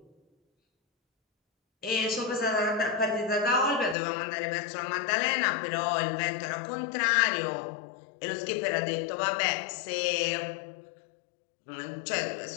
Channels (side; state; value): right; drops out; at 4.0 s